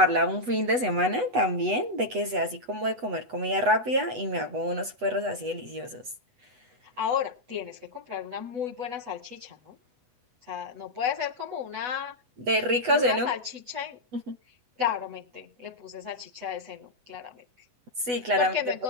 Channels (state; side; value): late; left; 8.1 ms